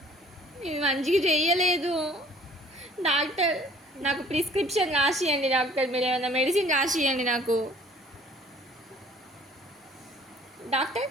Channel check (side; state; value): both; normal; correlation 0.54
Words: ఇది మంచిగా చెయ్యలేదు డాక్టర్. నాకు ప్రిస్క్రిప్షన్ రాసియండి డాక్టర్. మీరు ఏమైనా మెడిసిన్ రాసియండి నాకు డాక్టర్.